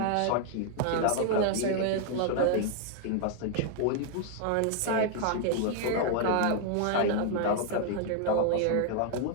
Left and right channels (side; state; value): both; different; correlation 0.00